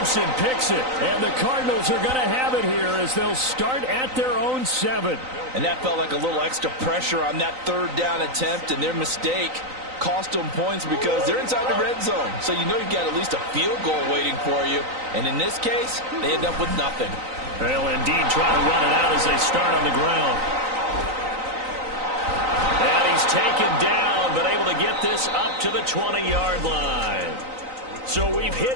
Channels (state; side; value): late; left; 3.9 ms